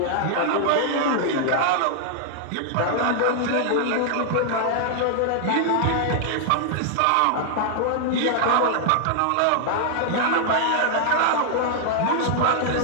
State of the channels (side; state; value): both; different; correlation -0.01